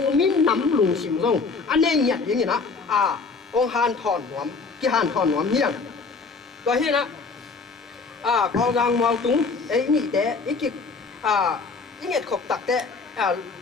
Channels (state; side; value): quieter; right; 4.5 dB